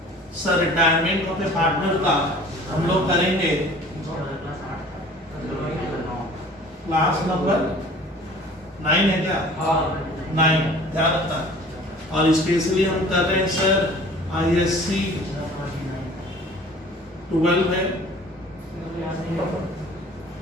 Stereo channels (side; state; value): both; normal; correlation 0.48